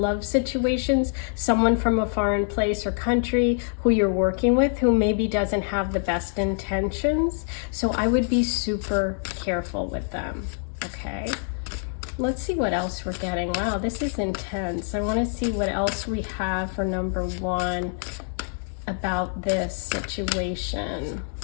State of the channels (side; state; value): right; silent; 61 dB below the other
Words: situations, someone from a foreign place or country who you're working with who maybe doesn't have the best intentions. So I would be super careful with them, okay? Let's see what else we're getting. Wow, this is intense. I want to see what else we have for number 1 about this situation.